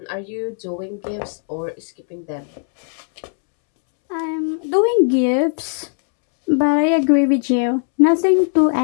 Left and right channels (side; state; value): right; silent; 67 dB below the other